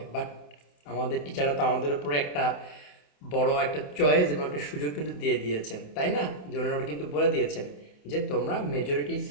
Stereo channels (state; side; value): late; right; 28 ms